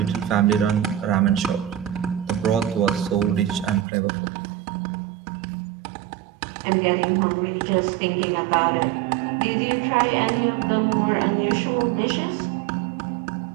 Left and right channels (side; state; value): left; drops out; at 3.9 s